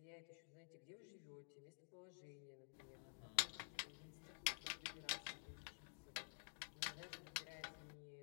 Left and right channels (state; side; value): silent; right; digital silence